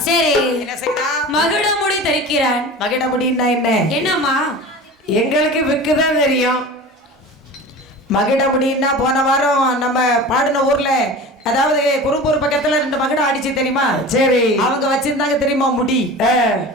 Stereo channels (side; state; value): both; normal; correlation 0.35